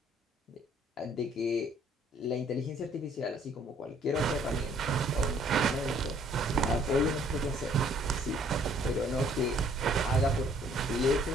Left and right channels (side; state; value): both; normal; correlation 0.61